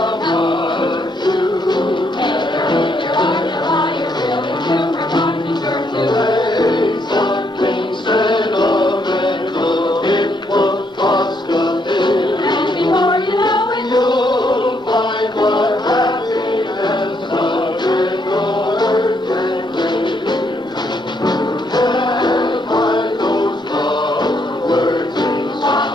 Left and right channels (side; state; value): both; normal; correlation 0.74